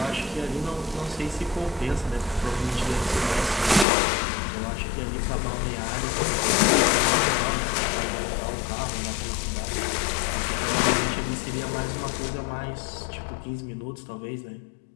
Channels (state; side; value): drops out; right; at 3.9 s